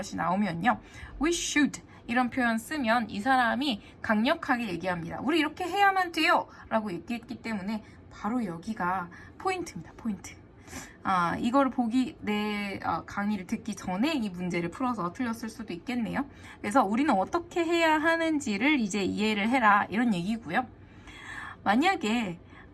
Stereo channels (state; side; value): identical; both; correlation 1.00